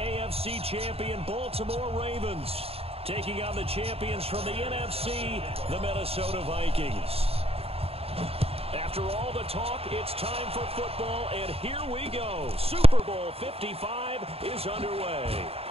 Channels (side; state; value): left; late; 0.28 ms